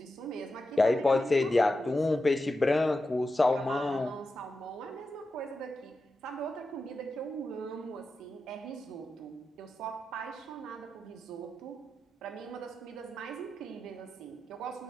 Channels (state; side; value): normal; both; correlation 0.90